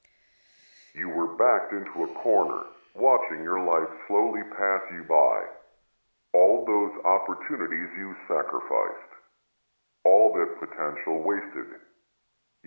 You were backed into a corner, watching your life slowly pass you by. All those opportunities you sacrificed. All that potential wasted.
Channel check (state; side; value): inverted; both; correlation -1.00